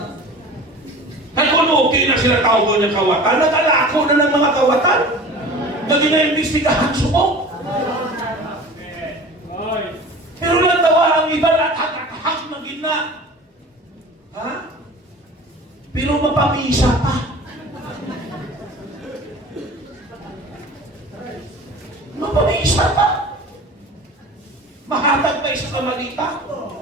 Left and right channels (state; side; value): normal; both; correlation 0.39